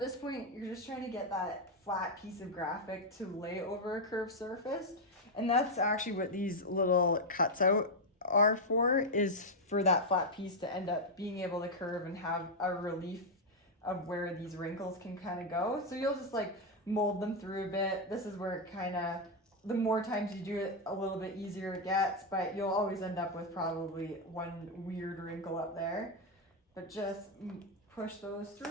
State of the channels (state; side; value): normal; both; correlation 0.01